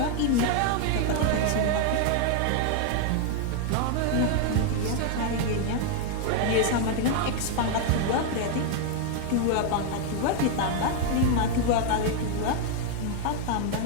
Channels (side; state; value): both; different; correlation 0.00